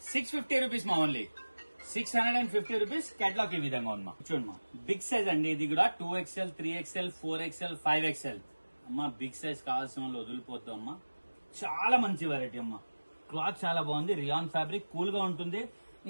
650 rupees మా ఓన్లీ. 650 రూపీస్. కేటలాగ్ ఈ విధంగా ఉంది మా. చూడండి మా, బిగ్ సైజ్ అండి. ఇది కూడా 2XL, 3XL, 4XL, 5XL అమ్మా. బిగ్ సైజ్ కావాల్సిన వాళ్ళు వదిలిపోతాం అమ్మా. చాలా మంచి వెరైటీ అమ్మా. క్లాత్ చాలా బాగుంది. రియాన్ ఫ్యాబ్రిక్, కూల్ గా ఉంటుంది.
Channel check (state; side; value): inverted; both; correlation -1.00